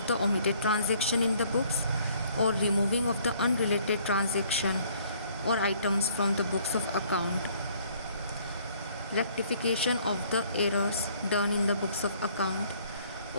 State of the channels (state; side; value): inverted; both; correlation -0.61